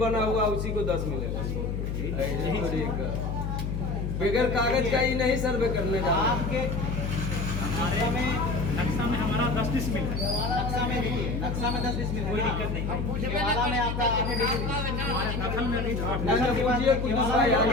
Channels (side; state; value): left; noise; hum, 2 dB below the sound